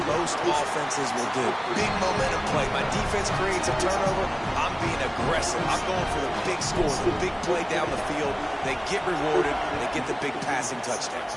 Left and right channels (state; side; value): identical; both; correlation 1.00